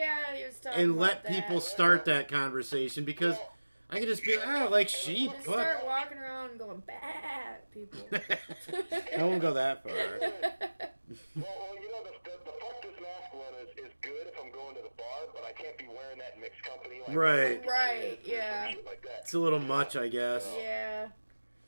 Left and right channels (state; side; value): inverted; both; correlation -1.00